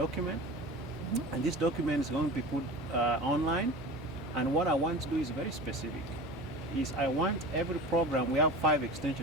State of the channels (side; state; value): both; normal; correlation 0.34